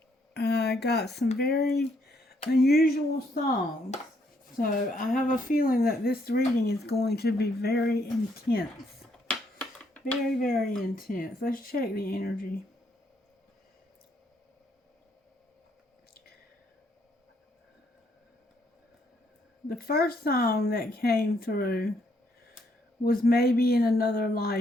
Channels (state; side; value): normal; both; correlation 0.72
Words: I got some very unusual songs. So, I have a feeling that this reading is going to be very intense. Very, very intense. Let's check the energy. The first song that came through was Maybe in Another